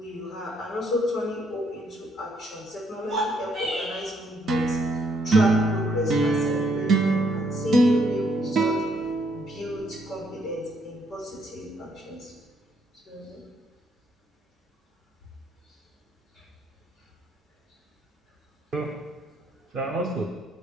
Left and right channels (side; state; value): both; normal; correlation 0.71